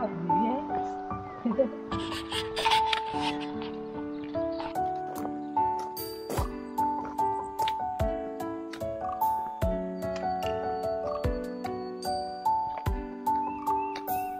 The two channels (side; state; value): both; identical; correlation 1.00